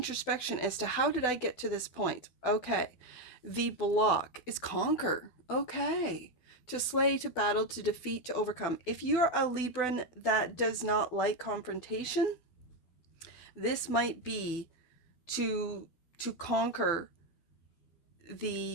as to how did I get to this point? Okay. The block is conquer. Okay. To slay, to battle, to defeat, to overcome. If you're a Libran that does not like confrontation, this might be to conquer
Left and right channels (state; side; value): late; right; 12 ms